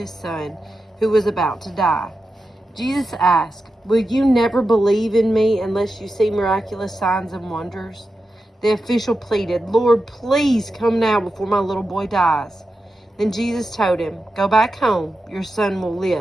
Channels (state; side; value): normal; both; correlation 0.90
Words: son, who was about to die. Jesus asked, "Will you never believe in me unless you see miraculous signs and wonders?" The official pleaded, "Lord, please come now before my little boy dies." Then Jesus told him, "Go back home, your son will